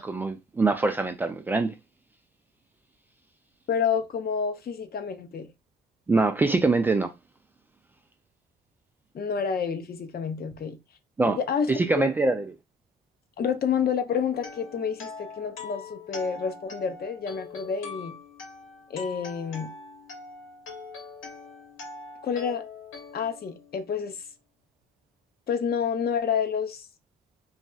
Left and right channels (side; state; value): both; normal; correlation 0.49